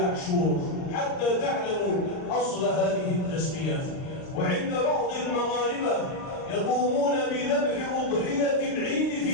حتى تعلموا أصل هذه التسمية. وعند بعض المغاربة يقومون بذبح أضحية العيد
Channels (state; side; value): late; right; 38 ms